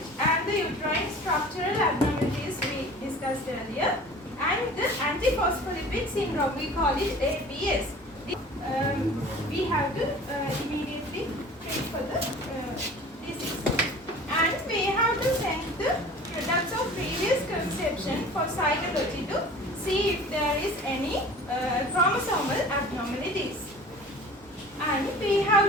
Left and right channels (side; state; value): both; normal; correlation 0.43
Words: And the uterine structural abnormalities we discussed earlier. And the antiphospholipid syndrome, we call it APS. We have to immediately treat for the disease. And we have to send the products of previous conception for cytology to see if there is any chromosomal abnormalities. And we